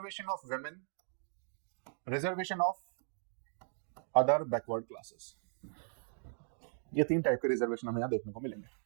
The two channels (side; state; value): left; silent; digital silence